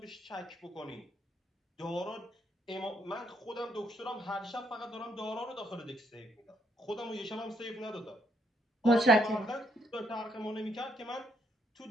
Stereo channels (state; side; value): normal; both; correlation 0.72